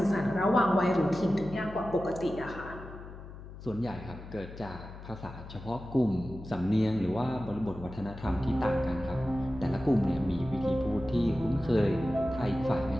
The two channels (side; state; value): left; noise; hum, 14 dB below the sound